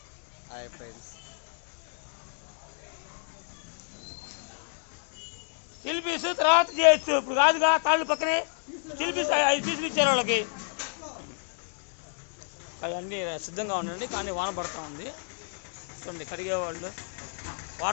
హాయ్ ఫ్రెండ్స్, చిల్పీస్ తర్వాత చేయొచ్చు, ఇప్పుడు కాదుగా. తాళ్ళు పక్కనే చిల్పీస్ 5 పీసులు ఇచ్చారు వాళ్ళకి. అవన్నీ సిద్ధంగా ఉండండి, కానీ వాన పడుతూ ఉంది. చూడండి, కడిగేవాళ్ళు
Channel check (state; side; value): silent; right; digital silence